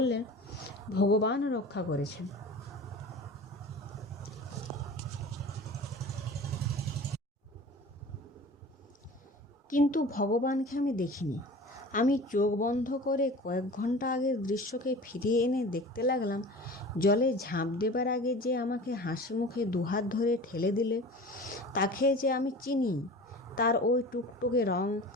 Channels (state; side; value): normal; both; correlation 0.38